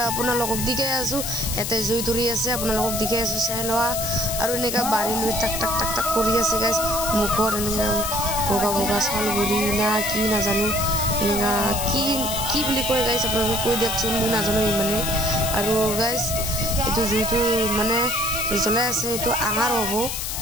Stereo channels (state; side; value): noise; left; hiss, 4 dB below the sound